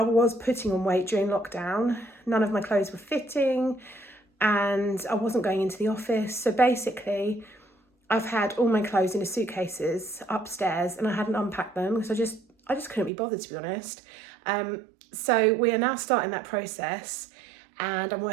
was putting on weight during lockdown. None of my clothes were fitting and I wasn't going into the office. So basically, I've had all my clothes in suitcases upstairs and I hadn't unpacked them because I just couldn't be bothered, to be honest. So we are now starting that process and I'm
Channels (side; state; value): left; drops out; at 13.1 s